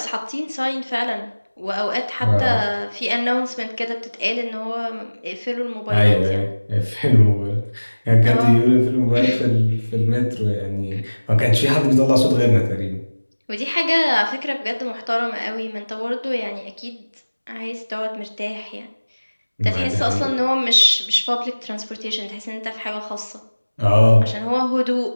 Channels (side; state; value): both; inverted; correlation -1.00